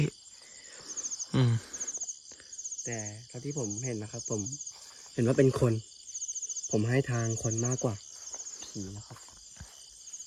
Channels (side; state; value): both; identical; correlation 1.00